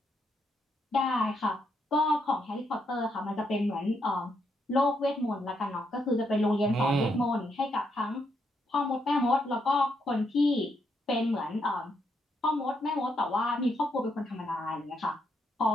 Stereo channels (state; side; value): normal; both; correlation 0.78